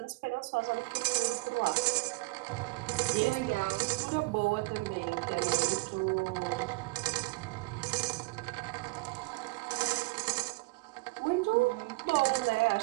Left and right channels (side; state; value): left; quieter; 25.0 dB